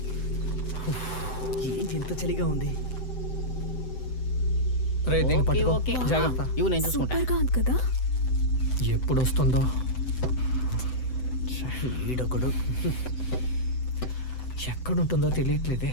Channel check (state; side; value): late; right; 7.9 ms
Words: ఏంటి ఇంత చలిగా ఉంది? రే దీన్ని ఓకే పట్టుకో. ఓకే జాగ్రత్త. ఇవి నేను చూసుకుంటా. సూపర్ గా ఉంది కదా. ఎప్పుడు వస్తుందో. ఈడొకడు. ఎక్కడుంటుందో తెలియట్లేదే.